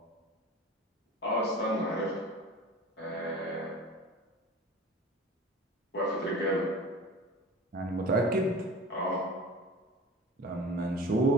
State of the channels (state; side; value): normal; both; correlation 0.38